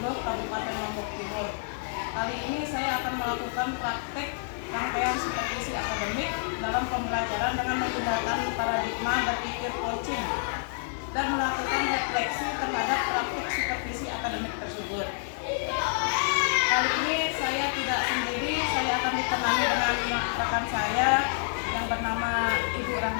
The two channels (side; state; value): right; silent; digital silence